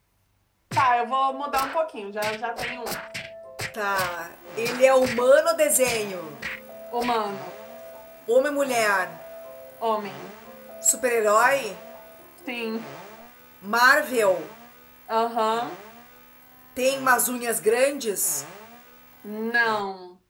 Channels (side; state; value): both; identical; correlation 1.00